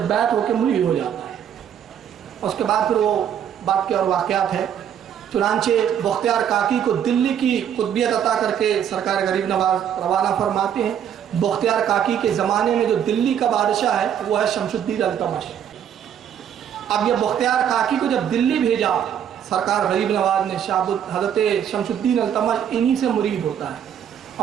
ہو کے مری ہو جاتا ہے. اس کے بعد پھر وہ بات کے اور واقعات ہے. چنانچہ بختیار کاکی کو دلی کی قطبیت عطا کر کے سرکار غریب نواز روانہ فرماتے ہیں. بختیار کاکی کے زمانے میں جو دلی کا بادشاہ ہے وہ ہے شمس الدین التمش. اب یہ بختیار کاکی کو جب دلی بھیجا سرکار غریب نواز نے، حضرت شمس الدین التمش انہی سے مرید ہوتا ہے.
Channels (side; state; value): left; quieter; 9.1 dB